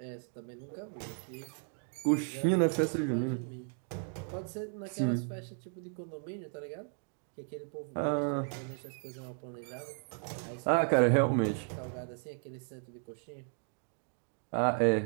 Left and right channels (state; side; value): silent; left; 54 dB below the other